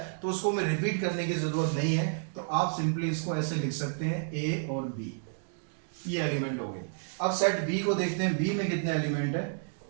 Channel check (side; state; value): left; silent; digital silence